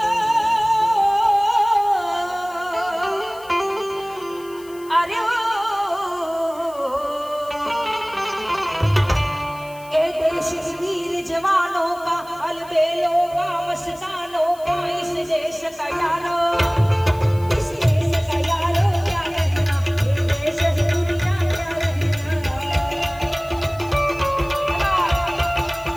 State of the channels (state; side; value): noise; left; hiss, 23 dB below the sound